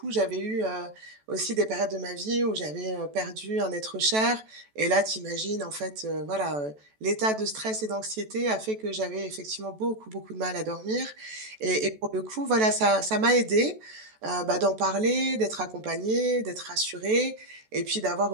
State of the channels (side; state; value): left; late; 14 ms